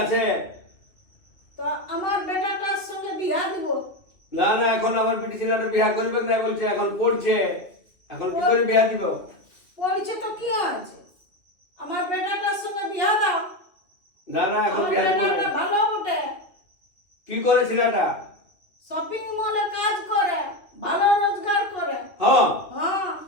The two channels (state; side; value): late; right; 2.5 ms